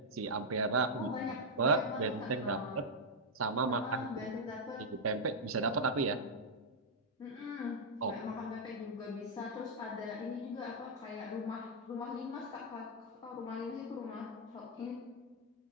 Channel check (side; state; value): both; normal; correlation -0.05